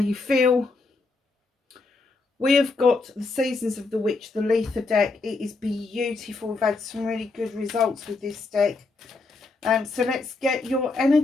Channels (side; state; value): right; quieter; 3.7 dB